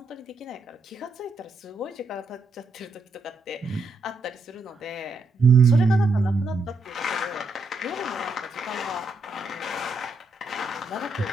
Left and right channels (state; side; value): quieter; left; 3.1 dB